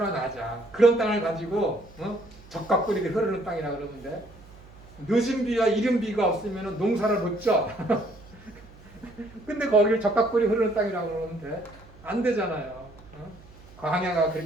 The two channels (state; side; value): noise; right; hum, 22 dB below the sound